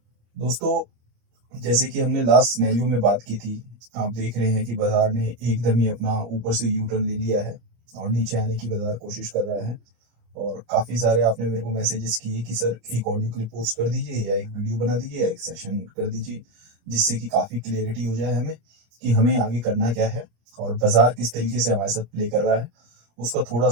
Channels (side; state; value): left; late; 25 ms